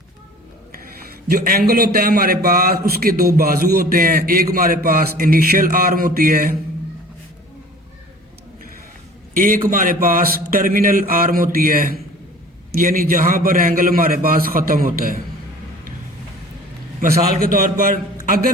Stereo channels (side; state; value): both; normal; correlation 0.46